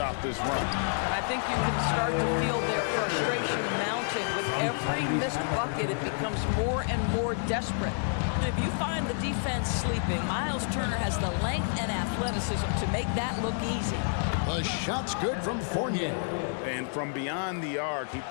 this run. And I think you can start to feel their frustration mounting. With every missed bucket, it becomes more and more desperate. If you find the defense sleeping, Miles Turner has the length and athleticism to make that look easy. The shot's good from Fournier. And from beyond the arc, he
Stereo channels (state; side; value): silent; right; digital silence